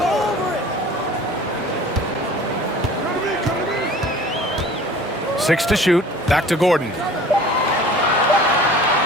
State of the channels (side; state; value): both; normal; correlation 0.45